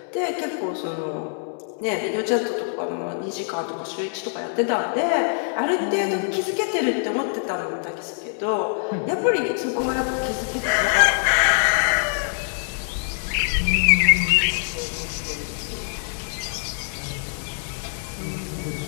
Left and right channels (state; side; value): silent; right; 62 dB below the other